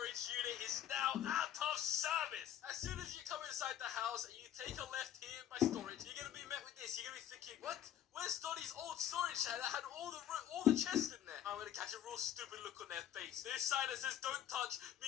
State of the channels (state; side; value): quieter; right; 10.8 dB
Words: unit is now out of service. As soon as you come inside the house and you take a left here in my storage, you're gonna be met with this. You're gonna be thinking, what? Where's Donnie's old storage shed that had all the chests in there? I'm gonna catch a real stupid look on their face. This sign that says don't touch